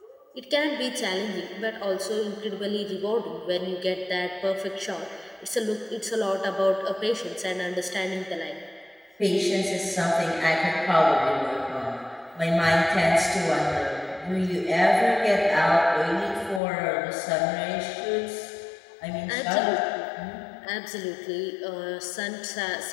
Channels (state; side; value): drops out; right; at 16.6 s